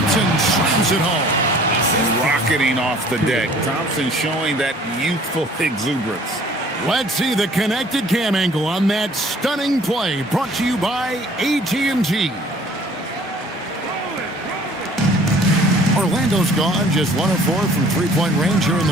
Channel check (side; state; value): both; normal; correlation 0.53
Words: slams it home. Rocketing off the deck. Thompson showing that youthful exuberance. Let's see the connected cam angle on that stunning play, brought to you by AT&T. Orlando's gone just 1 of 4 from three-point range here in